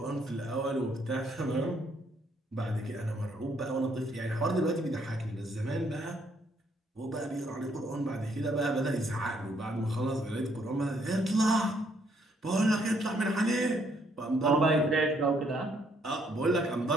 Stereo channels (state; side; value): normal; both; correlation 0.69